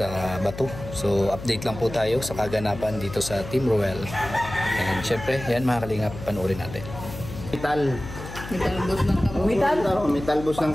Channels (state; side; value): noise; left; hum, 11 dB below the sound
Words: Batu. So update lang po tayo sa kaganapan dito sa Team Roel. And syempre, yan mga kalingap, panoorin natin. Metal bus ng kamuti. Metal bus ng